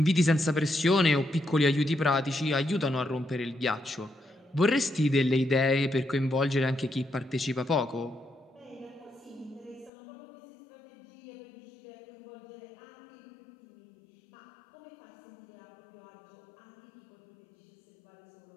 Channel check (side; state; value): right; drops out; at 9.9 s